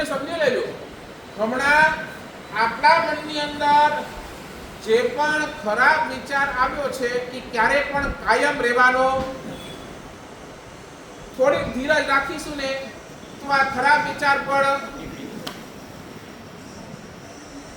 સમજી લેજો. હમણાં આપણા મનની અંદર જે પણ ખરાબ વિચાર આવ્યો છે એ ક્યારે પણ કાયમ રહેવાનો. થોડીક ધીરજ રાખીશું ને તો આ ખરાબ વિચાર પણ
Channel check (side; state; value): both; identical; correlation 1.00